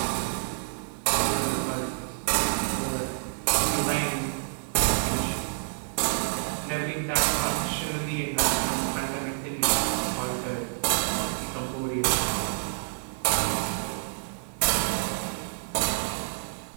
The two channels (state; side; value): silent; left; 59 dB below the other